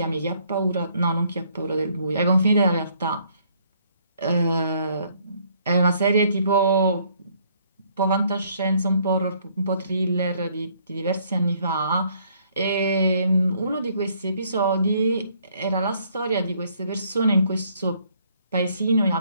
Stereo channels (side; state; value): both; inverted; correlation -0.66